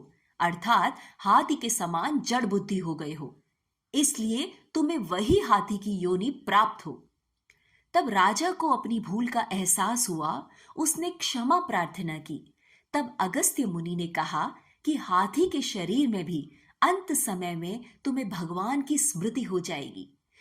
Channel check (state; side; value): identical; both; correlation 1.00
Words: अर्थात हाथी के समान जड़ बुद्धि हो गए हो, इसलिए तुम्हें वही हाथी की योनि प्राप्त हो। तब राजा को अपनी भूल का एहसास हुआ, उसने क्षमा प्रार्थना की। तब अगस्त्य मुनि ने कहा कि हाथी के शरीर में भी अंत समय में तुम्हें भगवान की स्मृति हो जाएगी,